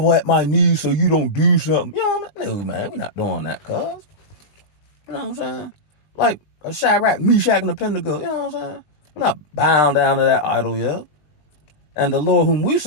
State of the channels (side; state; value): right; late; 20 ms